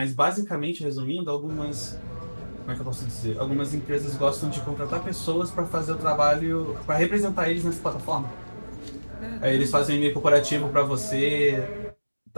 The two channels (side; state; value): both; inverted; correlation -1.00